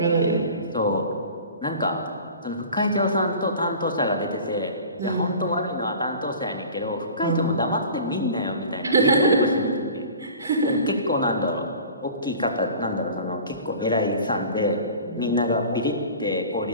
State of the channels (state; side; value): inverted; both; correlation -0.41